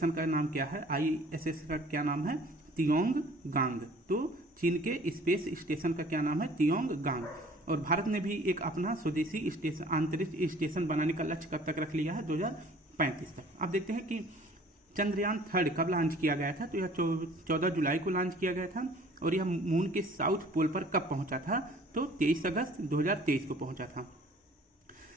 का नाम क्या है, ISS का क्या नाम है, तियोंगगांग। तो चीन के स्पेस स्टेशन का क्या नाम है, तियोंगगांग। और भारत ने भी एक अपना स्वदेशी स्टेशन अंतरिक्ष स्टेशन बनाने का लक्ष्य कब तक रख लिया है, 2035 तक। अब देखते हैं कि चंद्रयान 3 कब लॉन्च किया गया था, तो यह 14 जुलाई को लॉन्च किया गया था। और यह मून के साउथ पोल पर कब पहुंचा था, तो 23 अगस्त 2023 को पहुंचा था।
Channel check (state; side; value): normal; both; correlation 0.51